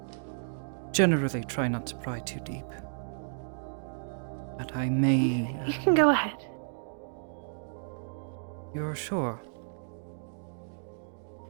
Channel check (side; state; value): left; silent; digital silence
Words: generally try not to pry too deep. But I may... You can go ahead. You're sure?